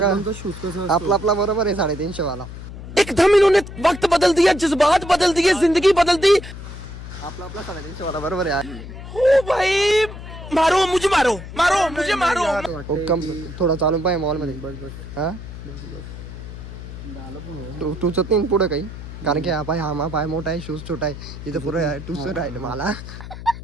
शूज कसं आपला बरोबर आहे 350 वाला. एकदम इन्होंने वक्त बदल दिया, जज्बात बदल दिए, जिंदगी बदल दी. आपला 350 वाला बरोबर आहे. ओ भाई मारो मुझे, मारो मारो मुझे, मारो. कम थोडा चालून पाहिजे मॉल मध्ये. बस बस हा झालं पण तू तुझं नाही पुढं काही. कारण की हा पाय हा पाय मोठा आहे शूज छोटा आहे. इथं पुरं टुसर राहिलं मला.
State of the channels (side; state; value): left; noise; hum, 12 dB below the sound